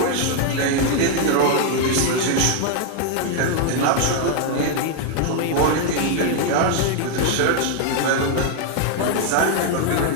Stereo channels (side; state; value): both; different; correlation 0.00